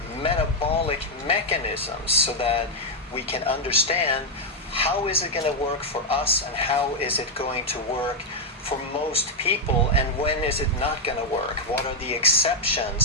metabolic mechanisms, so that we can understand how is it going to work for us and how is it going to work for most people, and when is it not going to work? What are the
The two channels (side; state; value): both; normal; correlation 0.00